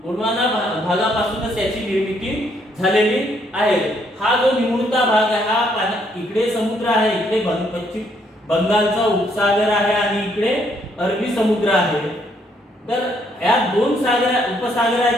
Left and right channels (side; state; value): both; normal; correlation 0.70